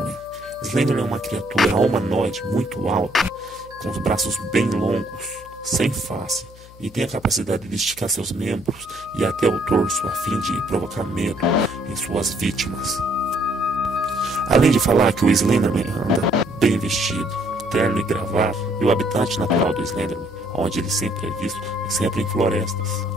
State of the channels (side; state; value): left; noise; hum, 21 dB below the sound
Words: Slenderman é uma criatura humanoide muito alta, com os braços bem longos, sem face, e tem a capacidade de esticar seus membros e até o torso a fim de provocar medo em suas vítimas. Além de falar que o Slenderman anda bem vestido, terno e gravata, e o habitat natural do Slenderman, onde ele sempre é visto, é sempre em florestas,